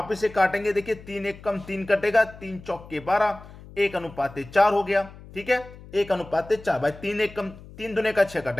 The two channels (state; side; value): noise; left; hum, 18 dB below the sound